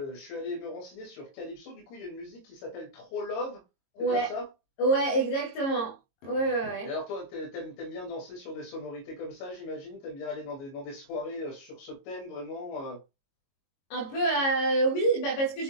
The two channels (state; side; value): late; right; 22 ms